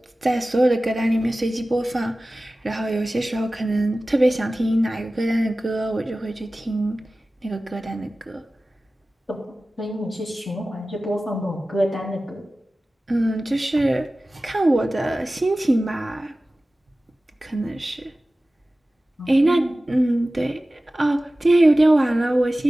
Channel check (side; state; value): both; normal; correlation 0.96